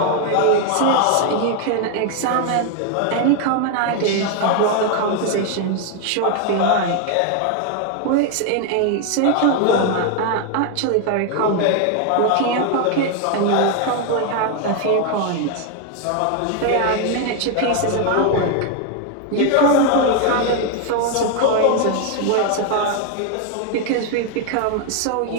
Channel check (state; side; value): different; both; correlation 0.01